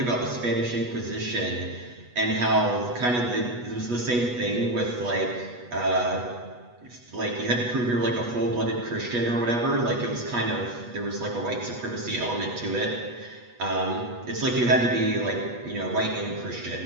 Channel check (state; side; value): late; left; 8.2 ms